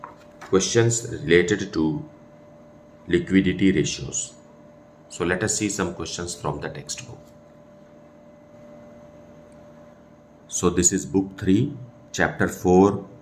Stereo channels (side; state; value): both; identical; correlation 1.00